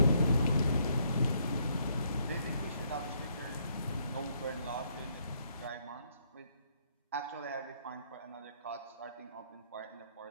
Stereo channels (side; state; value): both; inverted; correlation -0.71